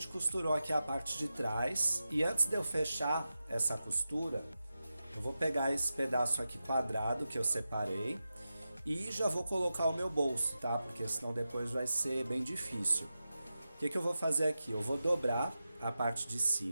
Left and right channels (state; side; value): inverted; both; correlation -0.92